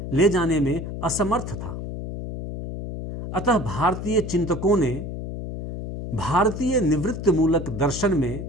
ले जाने में असमर्थ था। अतः भारतीय चिंतकों ने भारतीय निवृत्ति मूलक दर्शन में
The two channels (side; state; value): left; noise; hum, 7 dB below the sound